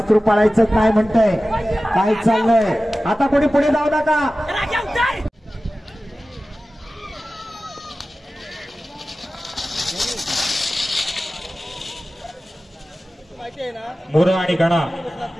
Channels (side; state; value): both; normal; correlation 0.96